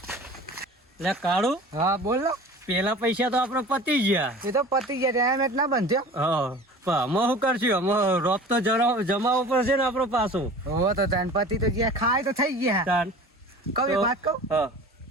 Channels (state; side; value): normal; both; correlation 0.40